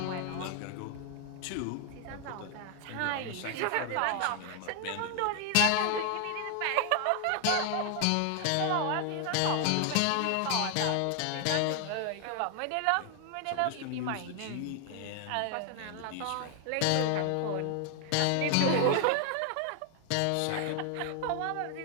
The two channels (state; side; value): different; both; correlation 0.00